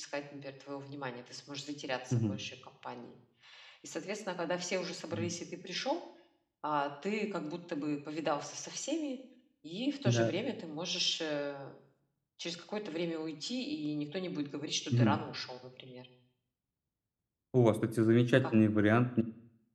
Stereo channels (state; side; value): identical; both; correlation 1.00